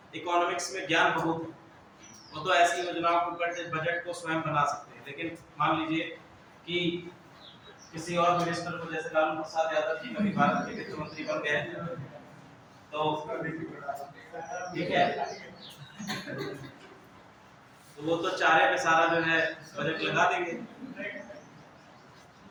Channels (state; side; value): identical; both; correlation 1.00